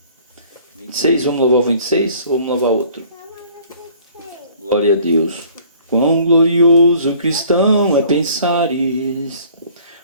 26, vamos louvar o 26 ou vamos louvar outro? Glória a Deus. Quão glorioso cristão é pensares.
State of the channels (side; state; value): both; inverted; correlation -0.54